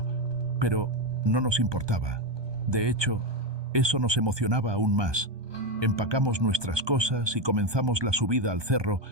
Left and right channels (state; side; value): late; left; 1.2 ms